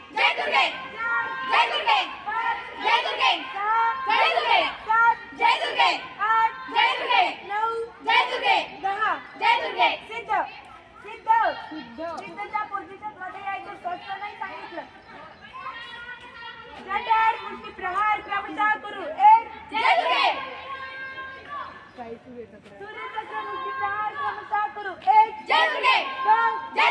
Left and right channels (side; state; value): both; identical; correlation 1.00